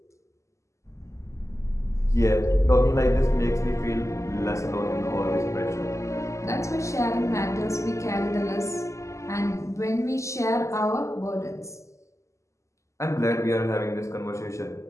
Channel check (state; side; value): late; right; 0.14 ms